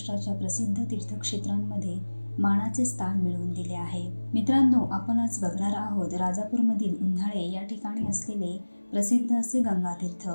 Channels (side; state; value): both; inverted; correlation -1.00